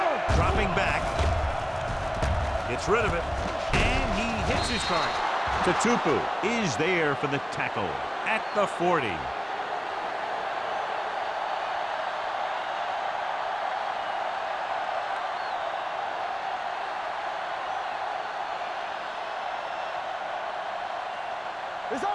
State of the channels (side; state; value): both; identical; correlation 1.00